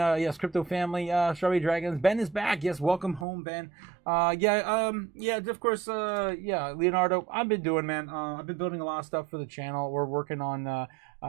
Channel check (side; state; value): left; drops out; at 3.2 s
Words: Crypto family. Strawberry Dragons. Ben is back. Yes, welcome home, Ben. Yeah, of course, yeah, Leonardo, I've been doing, man. I've been building a lot of stuff for the channel. We're working on